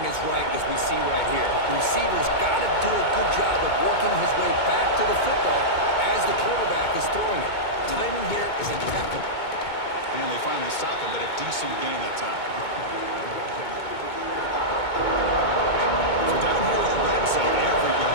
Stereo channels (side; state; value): right; late; 2.2 ms